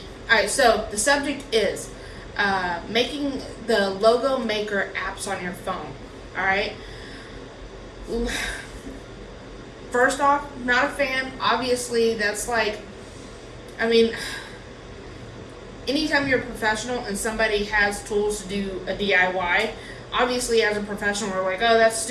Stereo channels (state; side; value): identical; both; correlation 1.00